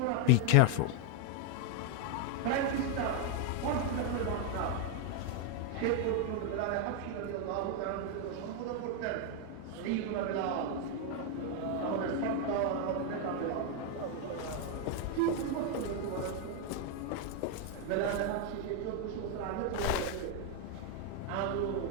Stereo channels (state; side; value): different; both; correlation 0.01